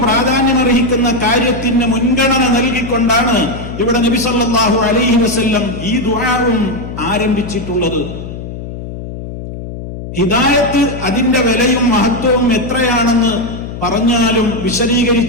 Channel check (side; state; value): left; noise; hum, 10 dB below the sound